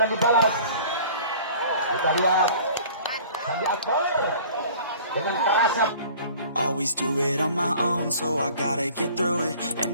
dibalas. Kita lihat Sandi Akbar dengan kerasa. Always do it on my own, so I gotta get through it. And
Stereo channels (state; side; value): inverted; both; correlation -0.48